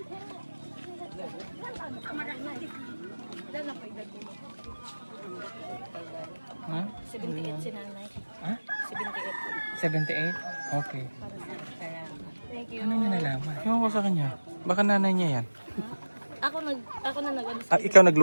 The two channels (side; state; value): both; inverted; correlation -1.00